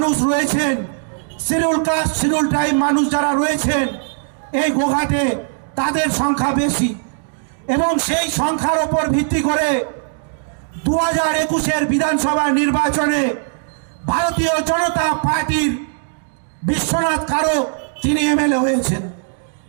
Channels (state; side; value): silent; left; digital silence